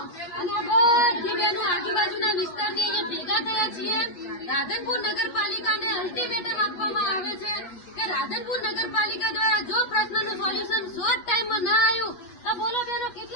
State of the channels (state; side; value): late; right; 8.3 ms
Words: અને બધી બહેનો આજુબાજુના વિસ્તારની અહીંયા ભેગા થયા છીએ. રાધનપુર નગરપાલિકાને અલ્ટિમેટમ આપવામાં આવે છે કે રાધનપુર નગરપાલિકા દ્વારા જો પ્રશ્નનું સોલ્યુશન શોર્ટ ટાઈમમાં ના આવ્યું તો બોલો બહેનો